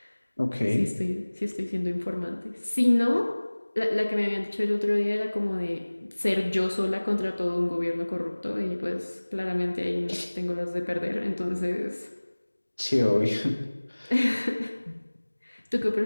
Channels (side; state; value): both; inverted; correlation -1.00